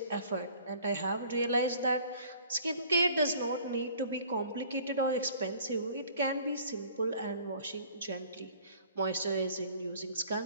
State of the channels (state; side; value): inverted; both; correlation -0.53